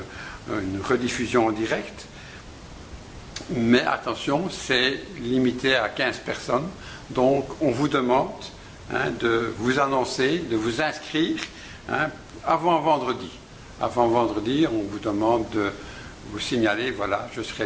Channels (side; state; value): both; identical; correlation 1.00